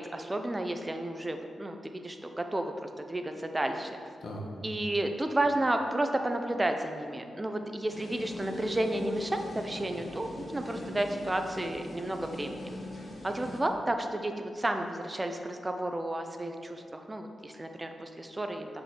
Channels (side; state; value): both; normal; correlation 0.94